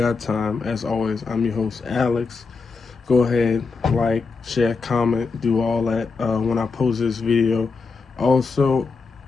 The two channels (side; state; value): right; quieter; 4.5 dB